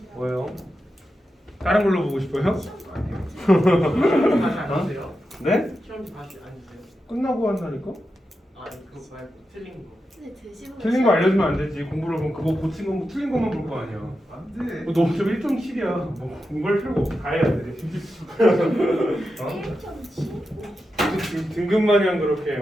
뭐요? 다른 걸로 보고 싶어요? 다시 안 주세요? 네? 시험지 다시 안 주세요? 끝나고 한다니까? 아니 그거 말고 틀린 거. 근데 드시고 틀린 거 알려주면 안 되지. 공부를 보면 그거 고친 거 틀린 것만 볼 거 아니야. 안돼. 너 좀 1.7이야. 뭐 공부할 필요가 없어. 다 해야 돼. 어? 1.7? 등급마냥 그렇게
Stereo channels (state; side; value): normal; both; correlation 0.89